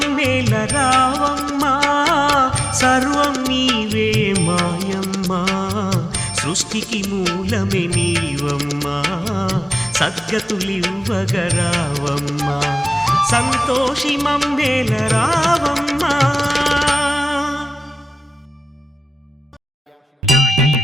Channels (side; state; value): both; normal; correlation 0.96